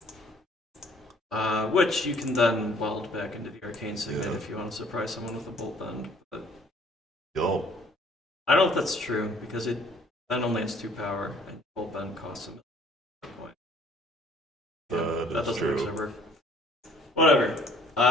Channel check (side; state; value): both; normal; correlation 0.57